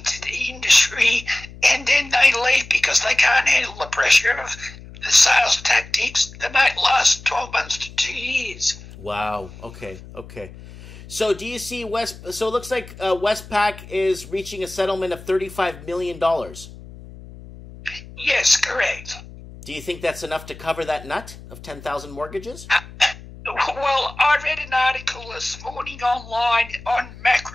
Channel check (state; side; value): noise; left; hum, 17 dB below the sound